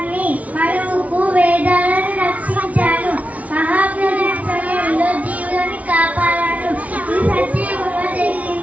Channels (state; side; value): late; left; 0.069 ms